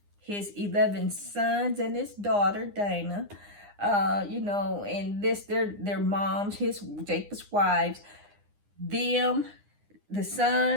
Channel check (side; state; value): left; late; 9.8 ms